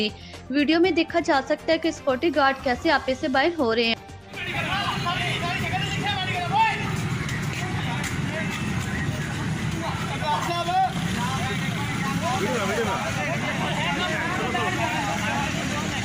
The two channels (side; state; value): both; identical; correlation 1.00